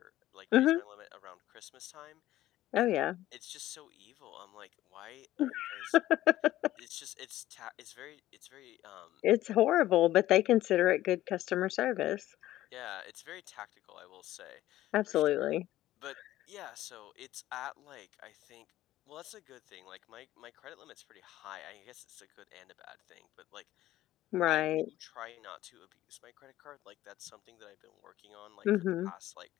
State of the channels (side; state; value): right; quieter; 14.8 dB